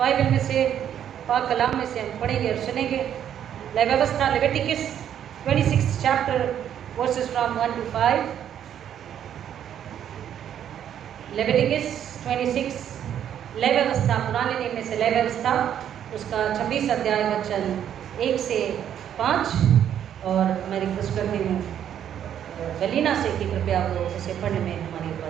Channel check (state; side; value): quieter; left; 9.8 dB